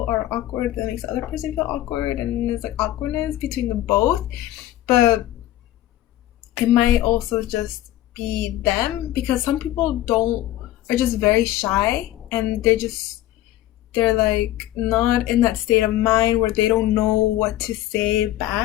are awkward, that makes the other person feel awkward, and there's like awkwardness between them both. But it might also just be them, because some people don't are just very shy, and they're like not in that state of mind where they don't know what to say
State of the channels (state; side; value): quieter; right; 14.5 dB